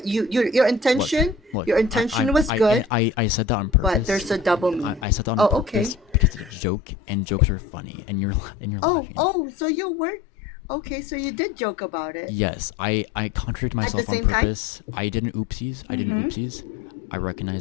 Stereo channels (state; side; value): drops out; right; at 6.6 s